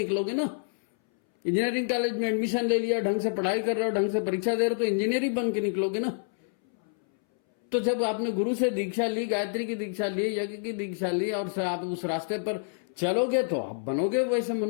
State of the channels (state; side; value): silent; right; 60 dB below the other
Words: ना। इंजीनियरिंग कॉलेज में एडमिशन ले लिया, ढंग से पढ़ाई कर रहे हो, ढंग से परीक्षा दे रहे हो तो इंजीनियर ही बन के निकलोगे ना। तो जब आपने गुरु से दीक्षा ली, गायत्री की दीक्षा ली, यज्ञ की दीक्षा ली और आप उस रास्ते पर चलोगे तो आप बनोगे वैसे